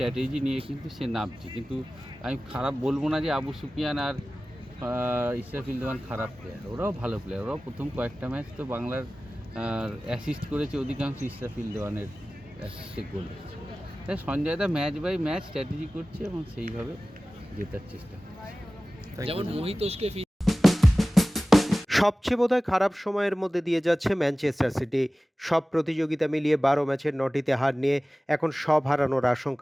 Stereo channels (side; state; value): both; normal; correlation 0.97